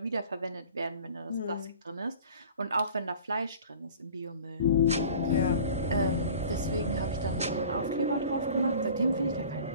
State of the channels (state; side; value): inverted; both; correlation -0.44